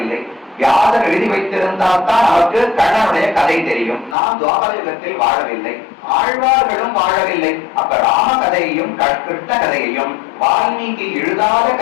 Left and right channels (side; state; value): right; drops out; at 4.2 s